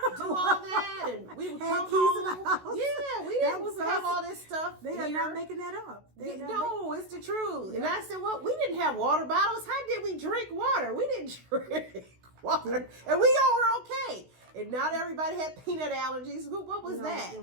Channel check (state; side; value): late; left; 16 ms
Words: do all that, and we would come home. Yeah, we didn't have all this stuff. They are not making that up. No, it's the truth. And I said, well, we didn't have water bottles. How did we drink water? We didn't drink water, and we all were okay. And not everybody had peanut allergies. What was that? There